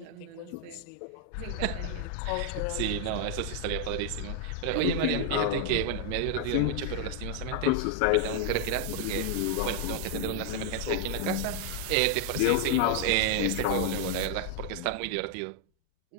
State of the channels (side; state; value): both; different; correlation 0.00